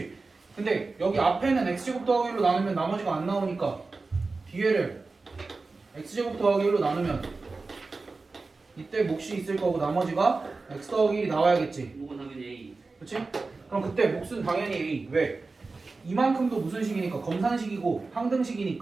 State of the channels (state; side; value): quieter; left; 3.8 dB